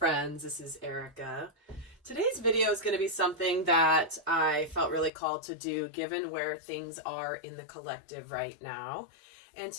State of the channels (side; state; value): right; drops out; at 5.1 s